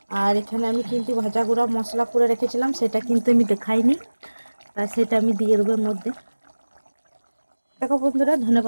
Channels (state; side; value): inverted; both; correlation -1.00